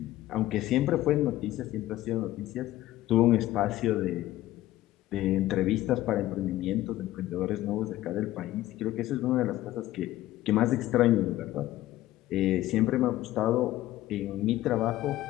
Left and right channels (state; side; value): quieter; right; 15.3 dB